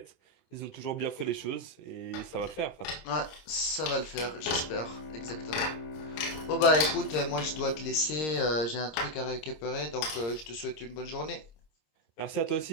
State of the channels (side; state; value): right; late; 26 ms